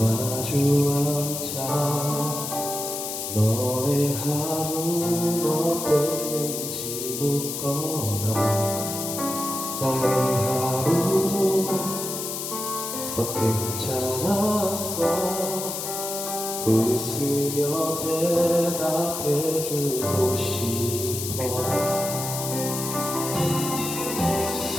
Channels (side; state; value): left; noise; hiss, 5 dB below the sound